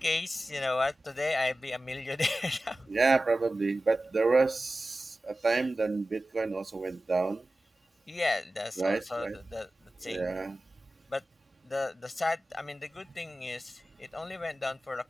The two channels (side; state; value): both; normal; correlation 0.95